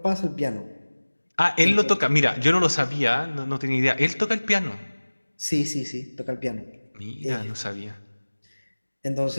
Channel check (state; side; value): inverted; both; correlation -1.00